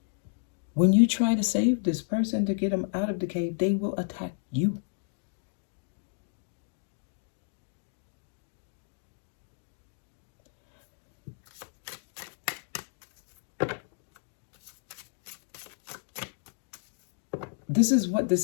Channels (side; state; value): right; silent; digital silence